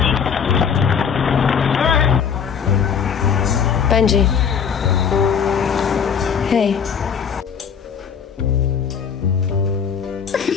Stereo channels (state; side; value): quieter; right; 7.1 dB